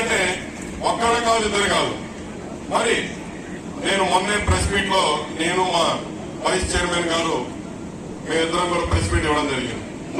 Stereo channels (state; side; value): identical; both; correlation 1.00